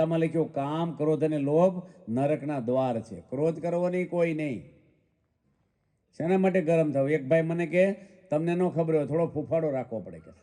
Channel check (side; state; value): both; identical; correlation 1.00